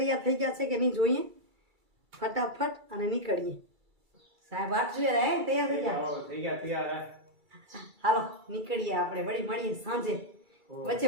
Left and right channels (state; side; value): late; left; 2.3 ms